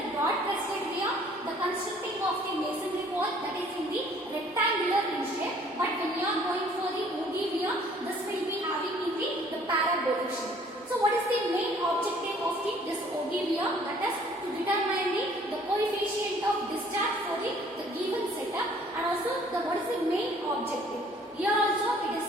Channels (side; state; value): both; normal; correlation 0.57